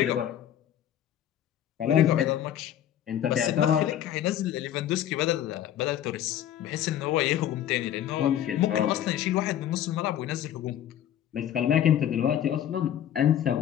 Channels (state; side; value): quieter; right; 10.9 dB